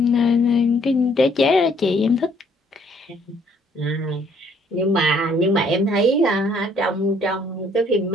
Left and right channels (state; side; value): normal; both; correlation 0.63